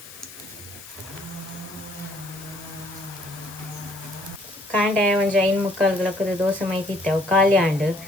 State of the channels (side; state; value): left; noise; hiss, 17 dB below the sound